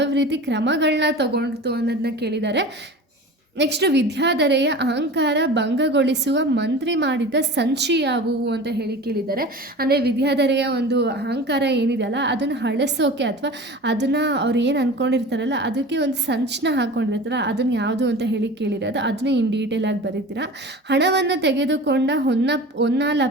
ರೀತಿ ಕ್ರಮಗಳನ್ನ ತಗೊಳ್ತು ಅನ್ನೋದನ್ನ ಕೇಳಿದ್ದಾರೆ. ನೆಕ್ಸ್ಟ್, ವಿದ್ಯಾಧರೆಯ ಅಹಂಕಾರ ಭಂಗಗೊಳಿಸುವ ಮಂತ್ರಿ ಮಾಡಿದ ಸಂಚಿ ಯಾವುವು ಅಂತ ಹೇಳಿ ಕೇಳಿದ್ದಾರೆ. ಅಂದರೆ ವಿದ್ಯಾಧರೆಯ ಒಂದು ಅಹಂಕಾರ ಏನಿದೆಯಲ್ಲ ಅದನ್ನು ಅಳಿಸೋಕೆ ಅಥವಾ ಅದನ್ನು ಅವ್ರು ಏನು ಅಂದ್ಕೊಂಡಿರ್ತಾರಲ್ಲ ಅದಕ್ಕೆ ಒಂದು ಸಂಚನ್ನ ಹಾಕ್ಕೊಂಡಿರ್ತಾರ ಅದನ್ನು ಯಾವುದು ಅಂತ ಹೇಳಿ ಕೇಳಿರೋದು ಅದನ್ನು ಇನ್ ಡೀಟೇಲ್ ಆಗಿ ಬರೀತೀರಾ. ಹಣವನ್ನು ತೆಗೆದುಕೊಂಡ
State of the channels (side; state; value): both; normal; correlation 0.36